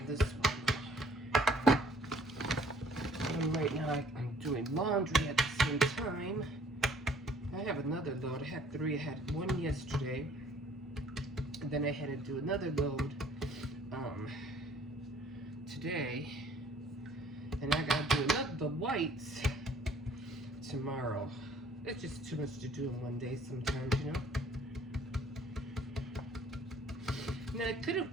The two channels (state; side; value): normal; both; correlation 0.58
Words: this one. And right now I'm doing laundry at the same time. I have another load. I had 3. I had 1 yesterday. And then I had to do another load today. And I got to do the whites tomorrow. It's just too much to do in one day sometimes, you know. Now, it could have